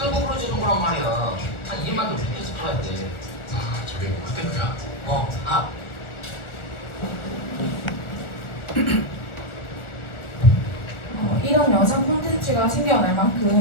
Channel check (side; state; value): right; late; 1.4 ms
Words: 부러지는 거란 말이야. 한 2만도 비켜서 팔아야 돼. 아 저기 뭐 그때 그야? 이런 영상 콘텐츠가 생겨날